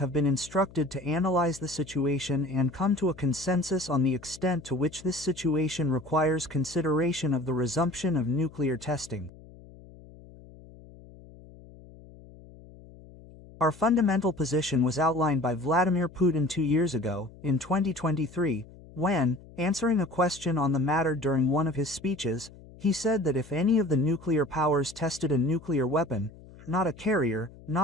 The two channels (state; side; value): noise; left; hum, 20 dB below the sound